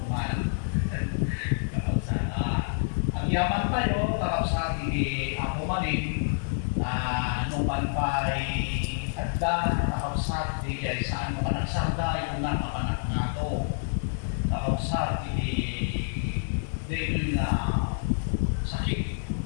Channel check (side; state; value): right; silent; 59 dB below the other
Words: Kapag sa agyaman tayo, kapag sa ako maling nung panpay at kapag sa saan nakanagsarday kung nakapanak na ako. Kapag sa dito na sakit